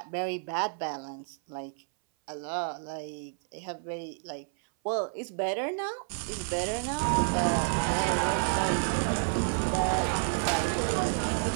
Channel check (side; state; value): left; silent; 58 dB below the other